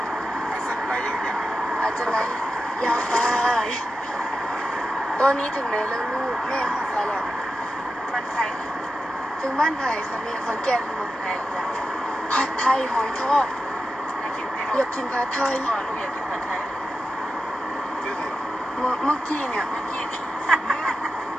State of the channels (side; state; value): both; normal; correlation 0.91